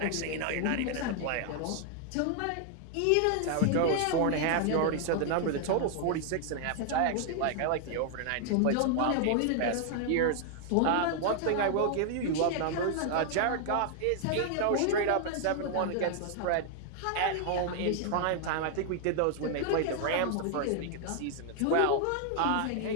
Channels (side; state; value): both; different; correlation 0.00